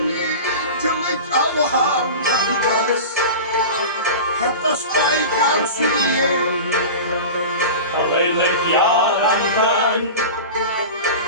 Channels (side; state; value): both; inverted; correlation -0.31